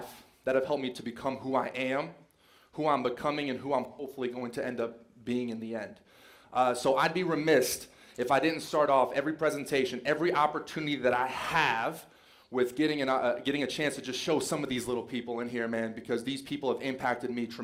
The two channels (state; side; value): identical; both; correlation 1.00